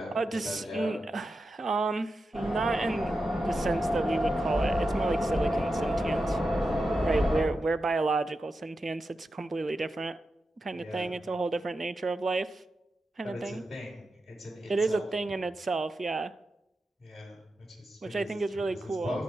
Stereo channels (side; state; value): both; normal; correlation 0.90